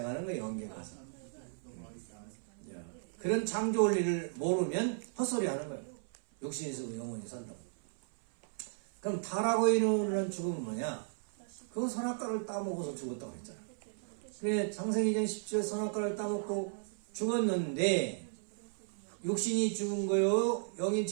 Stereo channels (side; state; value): left; silent; 54 dB below the other